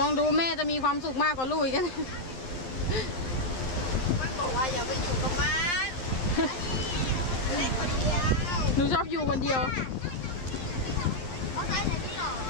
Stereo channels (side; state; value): right; late; 12 ms